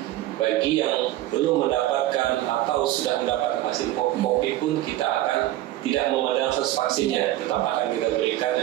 bagi yang belum mendapatkan atau sudah mendapatkan vaksin COVID pun kita akan tidak memandang status vaksinnya. Tetap akan kita berikan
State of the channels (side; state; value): left; quieter; 15.0 dB